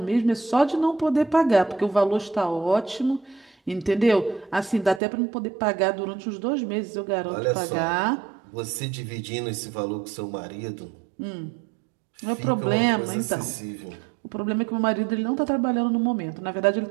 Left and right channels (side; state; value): left; drops out; at 5.0 s